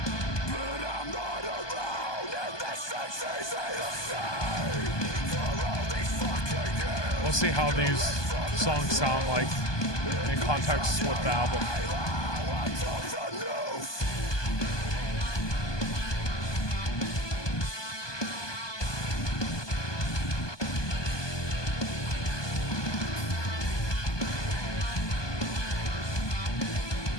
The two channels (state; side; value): late; right; 1.2 ms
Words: But I'm not alone, and this is easy to say. For all these fucking years. We'll see how these songs sound like in context with the album.